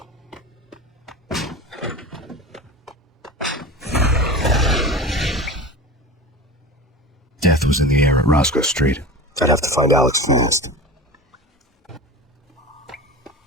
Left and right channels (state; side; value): normal; both; correlation 0.31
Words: Death was in the air at Roscoe Street. I'd have to find Alex fast.